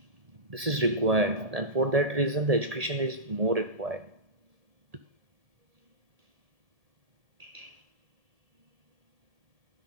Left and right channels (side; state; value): left; late; 1.7 ms